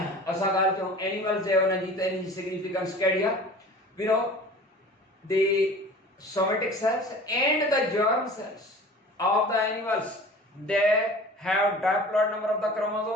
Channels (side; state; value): both; normal; correlation 0.42